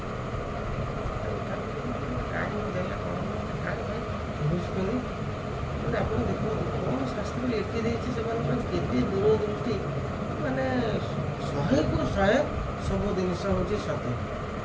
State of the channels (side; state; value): both; identical; correlation 1.00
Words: କାହିଁକି ଦେଲା କ'ଣ ବୁଝୁଛନ୍ତି ମାନେ ଆପଣ ଦେଖନ୍ତୁ କ'ଣ ଶାସ୍ତ୍ର ଲେଖି ଦେଇଛି ସେମାନଙ୍କର କେତେ ଦୂରଦୃଷ୍ଟି ମାନେ 100କୁ 100 ସବୁ ଜିନିଷ ହେଉଛି ସତ୍ୟ